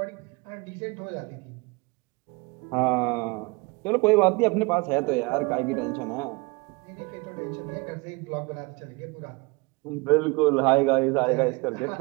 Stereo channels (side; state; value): left; quieter; 27.0 dB